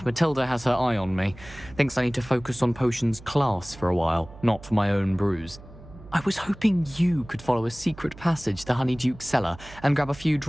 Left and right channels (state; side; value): noise; right; hum, 19 dB below the sound